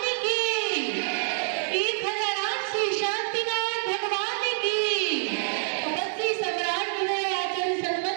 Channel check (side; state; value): left; silent; 58 dB below the other